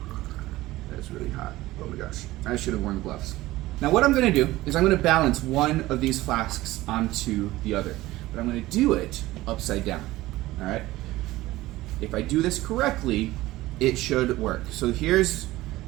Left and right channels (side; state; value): left; quieter; 17.5 dB